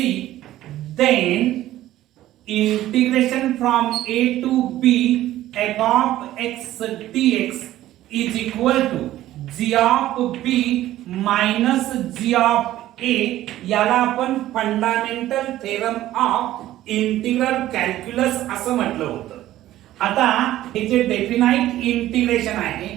then integration from A to B F of x DX is equal to G of B minus G of A, याला आपण fundamental theorem of integral calculus असं म्हटलं होतं. आता हे जे डेफिनाइट इंटिग्रेशन आहे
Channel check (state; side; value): quieter; left; 14.3 dB